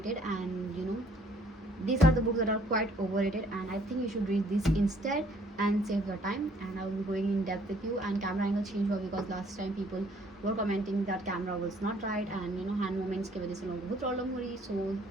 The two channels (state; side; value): normal; both; correlation 0.61